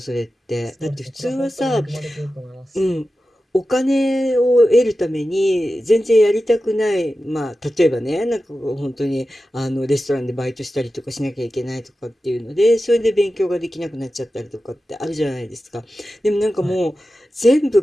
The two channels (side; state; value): both; normal; correlation 0.93